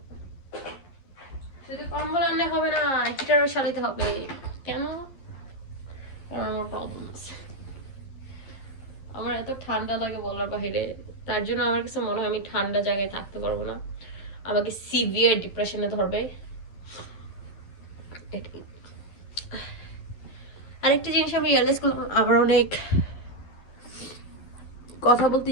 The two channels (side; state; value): right; late; 11 ms